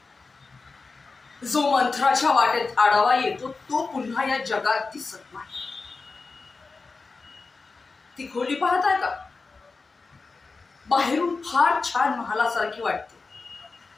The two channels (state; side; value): quieter; right; 4.1 dB